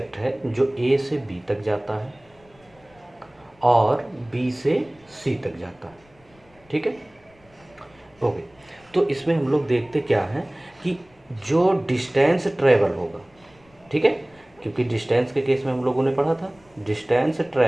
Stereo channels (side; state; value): left; noise; rumble, 30 dB below the sound